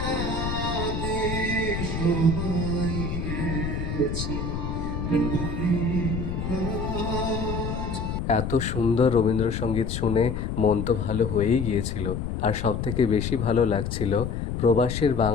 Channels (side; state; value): left; noise; rumble, 3 dB below the sound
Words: সবাই গেছে ভুলে আজ। এত সুন্দর রবীন্দ্রসঙ্গীত শুনে মন তো ভালো হয়েই গিয়েছিল, আর সবথেকে বেশি ভালো লাগছিল প্রবাসের